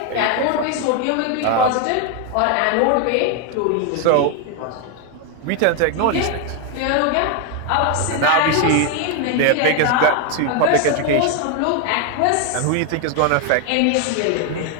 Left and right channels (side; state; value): both; different; correlation 0.01